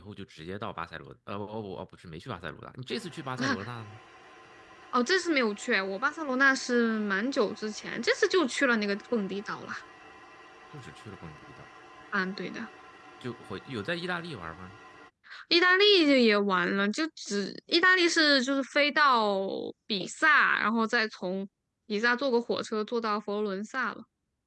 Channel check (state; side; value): identical; both; correlation 1.00